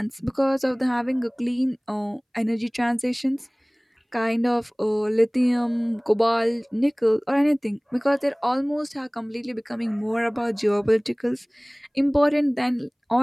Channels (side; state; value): both; identical; correlation 1.00